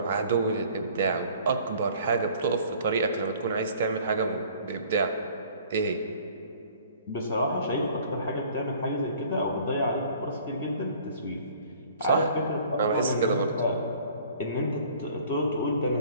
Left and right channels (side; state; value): both; inverted; correlation -0.53